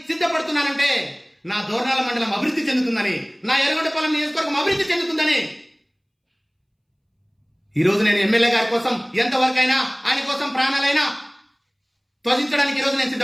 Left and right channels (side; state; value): both; identical; correlation 1.00